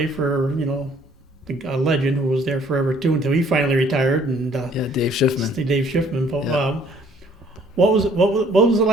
for a legend who was there forever too until he finally retired. And Yeah, Dave Schiffman. Dave Schiffman. But, Yeah. what was it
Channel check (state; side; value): normal; both; correlation 0.59